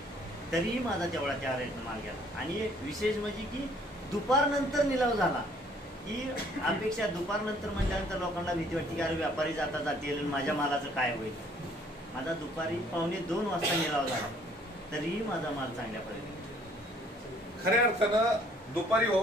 तरीही माझा तेवढा त्या रेटनं माल गेला। आणि विशेष म्हणजे की दुपारनंतर निलाव झाला की अपेक्षा दुपारनंतर म्हटल्यानंतर लोकांना भीती वाटते की अरे व्यापारी जाता जातील माझ्या मालाचं काय होईल। माझा दुपारी 1:45 वाजता निलाव झाला तरीही माझा माल चांगल्या पद्धतीने खऱ्या अर्थानं दुपारी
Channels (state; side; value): normal; both; correlation 0.60